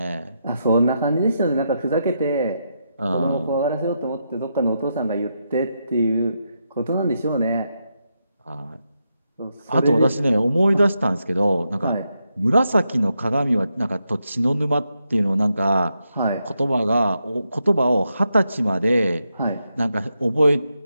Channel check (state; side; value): inverted; both; correlation -0.83